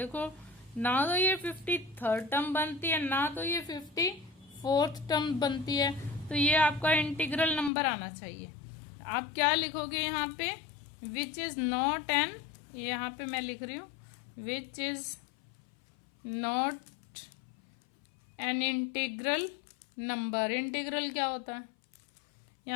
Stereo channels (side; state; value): right; drops out; at 7.7 s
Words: ना तो ये 53rd टर्म बनती है, ना तो ये 54th टर्म बनती है, तो ये आपका इंटीग्रल नंबर आना चाहिए। आप क्या लिखोगे यहाँ पे? विच इज नॉट एन, यहाँ पे मैं लिख रही हूँ विच is not an integral number. Integral क्या होता है?